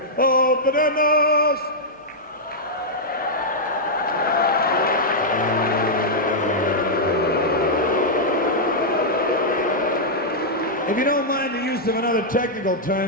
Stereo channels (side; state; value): both; normal; correlation -0.07